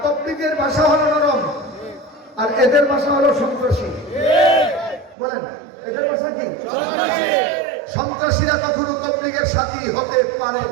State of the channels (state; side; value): drops out; left; at 5.2 s